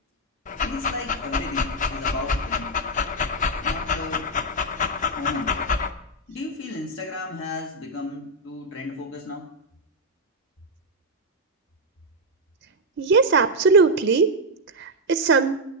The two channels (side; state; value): both; normal; correlation 0.00